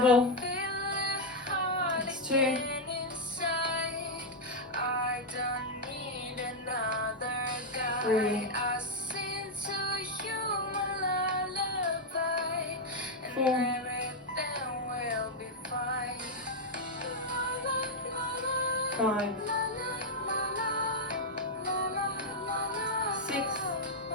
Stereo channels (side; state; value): both; normal; correlation -0.01